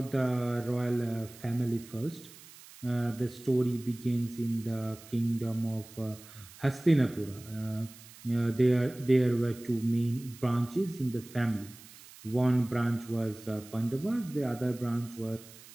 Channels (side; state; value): right; noise; hiss, 20 dB below the sound